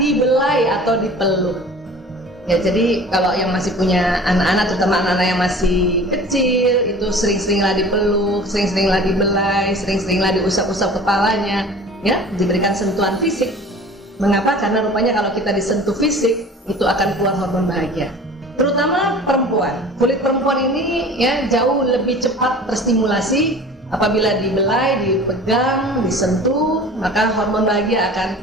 atau dipeluk. Ya, jadi kalau yang masih punya anak-anak, terutama anak-anak yang masih kecil, itu sering-seringlah dipeluk, sering-seringlah dibelai, sering-seringlah diusap-usap kepalanya, ya, diberikan sentuhan fisik. Mengapa? Karena rupanya kalau kita disentuh fisik, itu akan keluar hormon bahagia. Terutama perempuan. Kulit perempuan ini ya jauh lebih cepat terstimulasi apabila dibelai, dipegang, disentuh, maka hormon bahagia akan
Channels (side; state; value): both; normal; correlation 0.42